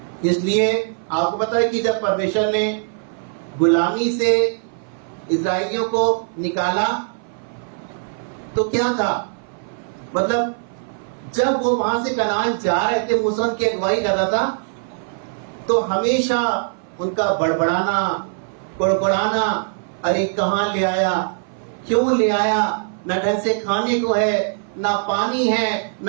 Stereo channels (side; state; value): left; silent; 59 dB below the other